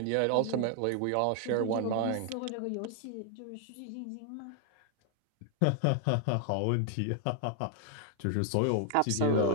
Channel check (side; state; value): both; different; correlation 0.00